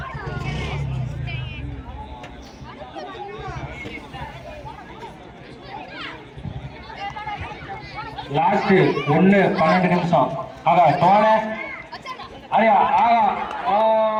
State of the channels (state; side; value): identical; both; correlation 1.00